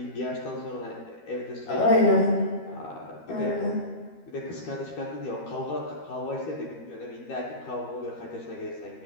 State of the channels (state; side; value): late; right; 13 ms